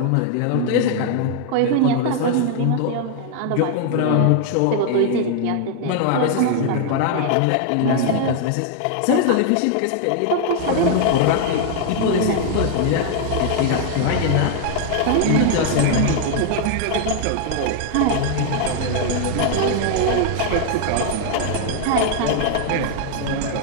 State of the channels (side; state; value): both; different; correlation 0.00